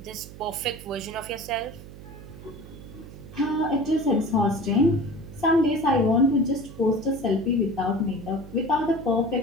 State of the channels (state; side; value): noise; right; hum, 15 dB below the sound